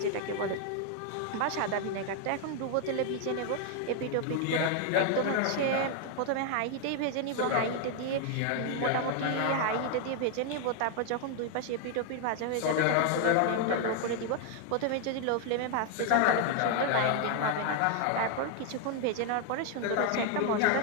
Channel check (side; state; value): both; different; correlation 0.00